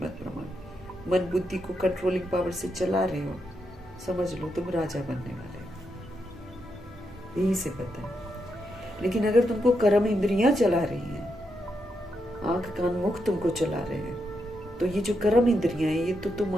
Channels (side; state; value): both; normal; correlation 0.83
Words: प्रमाण, मन बुद्धि को कंट्रोलिंग पावर से चला रहे हो, समझ लो तुम राजा बनने वाले हो, यही से पता है। लेकिन अगर तुमको कर्म इंद्रियां चला रही हैं, आंख कान मुख तुमको चला रहे हैं, तो ये जो कर्म इंद्रियां हैं ये तो तुम